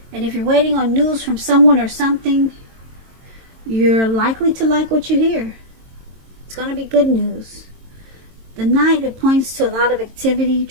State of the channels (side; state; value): left; late; 22 ms